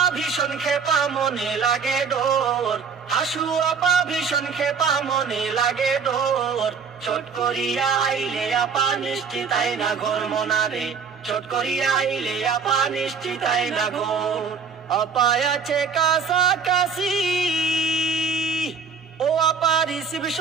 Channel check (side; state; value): left; quieter; 5.9 dB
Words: ভীষণ খেপা মনে লাগে ডোর, হাসু আপা ভীষণ খেপা মনে লাগে ডোর। চট করিয়া আইলে আপা নিশ্চিতাই না ঘর মনারে, চট করিয়া আইলে আপা নিশ্চিতাই না ঘর। আপা আছে কাছাকাছি, ও আপা